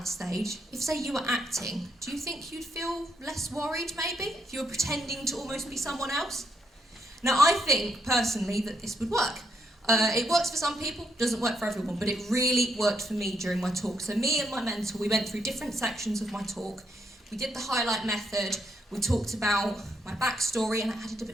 stage, if say you were acting, do you think you'd feel less worried maybe? If you were pretending to almost be someone else? Now I think personally that this would work. It works for some people, doesn't work for everyone, but it really worked for me during my talk. So me and my mentor, we went through different sections of my talk. We did the highlight method. We talked about my backstory and I added a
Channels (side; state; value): both; normal; correlation 0.76